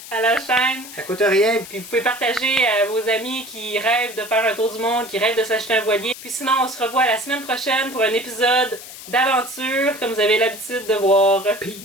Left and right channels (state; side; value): noise; left; hiss, 14 dB below the sound